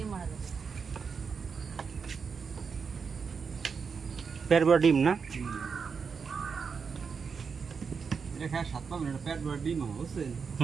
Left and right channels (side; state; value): left; quieter; 5.7 dB